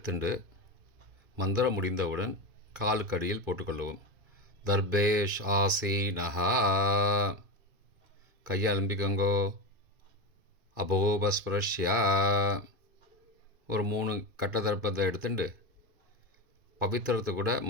மந்திரம் முடிந்தவுடன் காலுக்கு அடியில் போட்டுக்கொள்ளவும். தர்பேஷ் ஆசீனஹா. கையை அலம்பிக்கோங்கோ. அபோபஸ்பிரஷ்யா. ஒரு 3 கட்ட தர்ப்பத்தை எடுத்துட்டு பவித்திரத்தை கூட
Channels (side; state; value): left; late; 2.3 ms